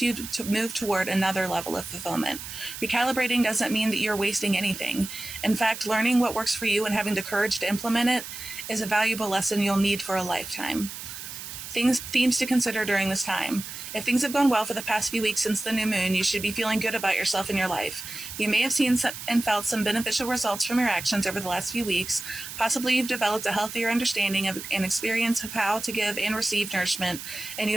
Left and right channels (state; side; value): noise; right; hiss, 10 dB below the sound